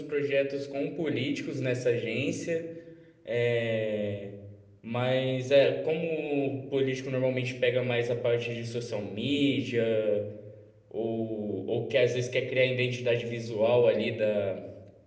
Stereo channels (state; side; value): identical; both; correlation 1.00